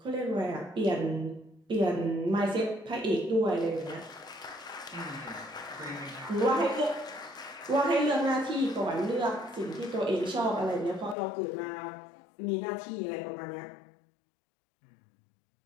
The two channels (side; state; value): right; drops out; at 11.2 s